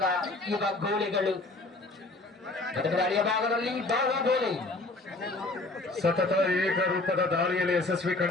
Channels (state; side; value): quieter; right; 3.0 dB